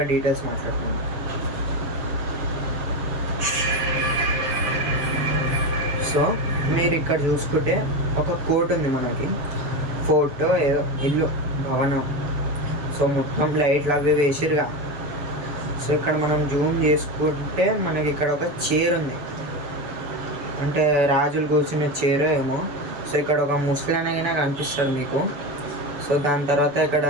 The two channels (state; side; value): late; left; 7.0 ms